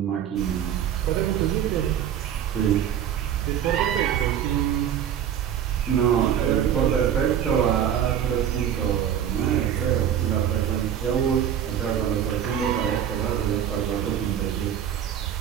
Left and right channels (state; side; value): quieter; left; 9.6 dB